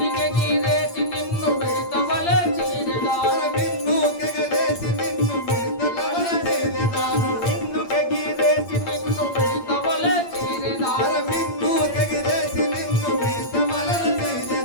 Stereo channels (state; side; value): late; right; 8.7 ms